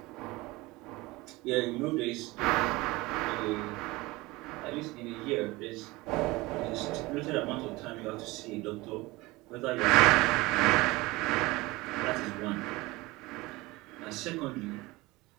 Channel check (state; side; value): quieter; left; 21.5 dB